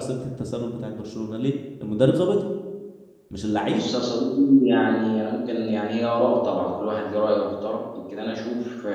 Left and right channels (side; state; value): both; identical; correlation 1.00